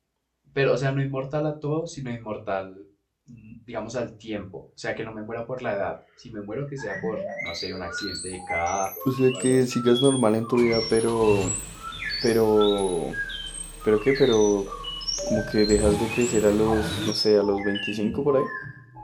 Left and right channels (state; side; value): identical; both; correlation 1.00